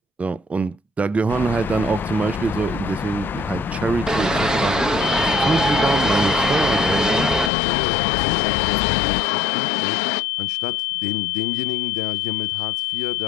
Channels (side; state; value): right; drops out; at 7.5 s